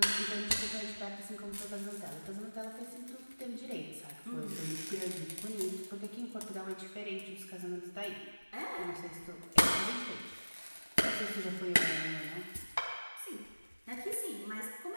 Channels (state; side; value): inverted; both; correlation -1.00